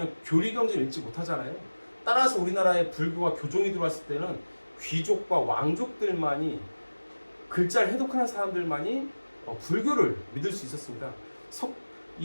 교리 경전을 읽지 못하잖아요. 따라서 우리나라에 불교가 교종이 들어왔을 때는 귀족과 왕족들만이 글자를 해독하는 사람들만이 불교를 믿을 수 있었습니다.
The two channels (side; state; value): both; inverted; correlation -1.00